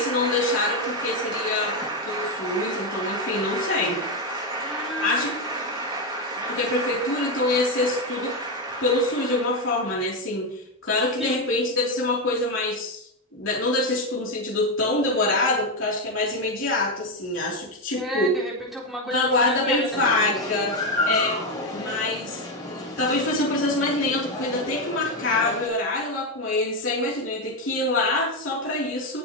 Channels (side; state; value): both; normal; correlation 0.08